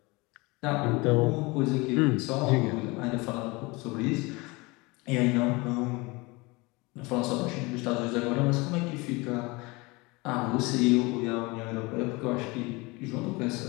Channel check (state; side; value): quieter; right; 24.8 dB